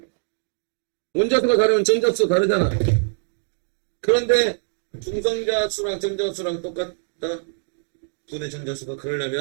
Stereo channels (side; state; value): left; silent; 62 dB below the other